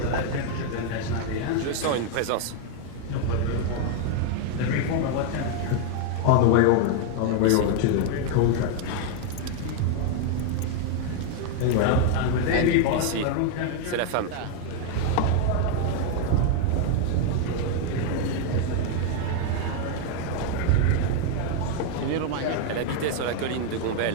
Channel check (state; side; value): different; both; correlation 0.00